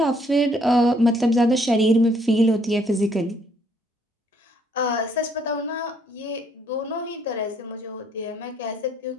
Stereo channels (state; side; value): normal; both; correlation 0.67